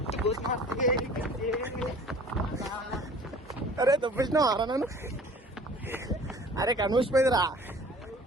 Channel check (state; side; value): normal; both; correlation 0.47